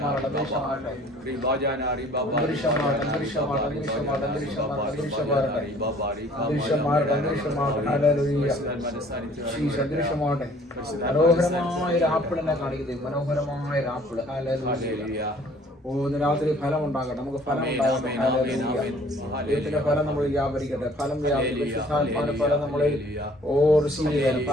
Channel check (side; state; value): both; normal; correlation 0.55